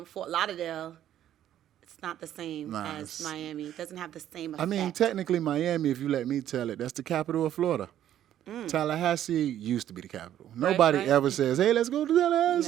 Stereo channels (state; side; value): quieter; left; 11.4 dB